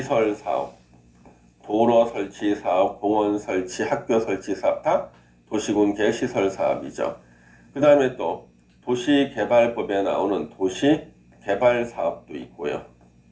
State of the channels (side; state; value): both; identical; correlation 1.00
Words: 사업, 도로 설치 사업, 공원 설치, 학교 설치 사업 다 도시군 계획 시설 사업이죠. 그 다음에 또 도시개발법에 나오는 도시개발 사업도 있고요.